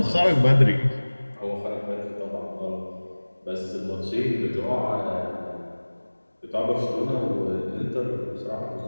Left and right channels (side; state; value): both; inverted; correlation -1.00